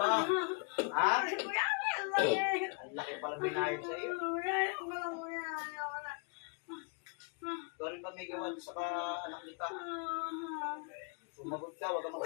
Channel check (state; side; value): quieter; right; 37.4 dB